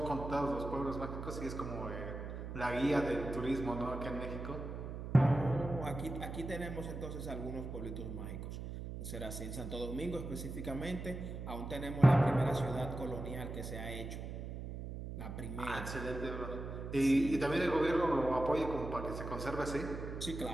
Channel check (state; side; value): noise; right; hum, 7 dB below the sound